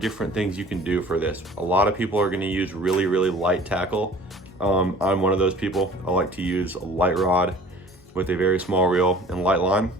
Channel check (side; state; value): both; normal; correlation 0.47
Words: different things you can do for this. A lot of people are gonna use really light tackle. I'm one of those people. I like to use a light rod with a very small reel and light line.